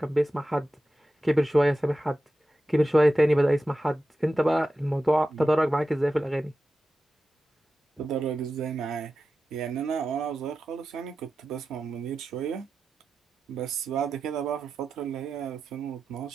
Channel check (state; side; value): normal; both; correlation 0.92